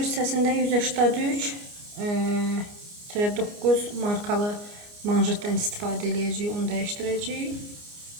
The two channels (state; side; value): late; left; 29 ms